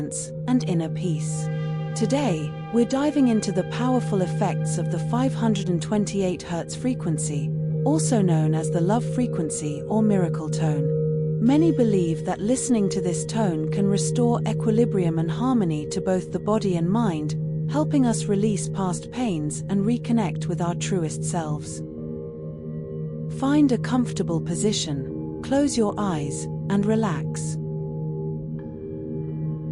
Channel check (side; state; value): both; identical; correlation 1.00